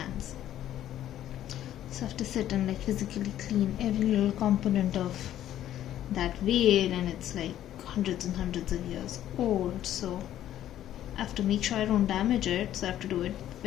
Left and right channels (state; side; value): quieter; right; 12.0 dB